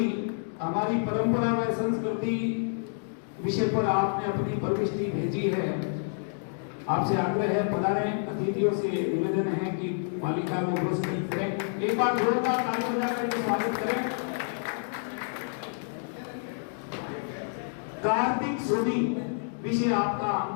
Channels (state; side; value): silent; right; digital silence